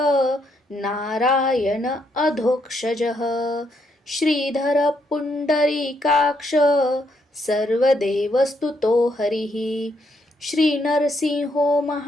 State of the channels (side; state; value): both; normal; correlation 0.75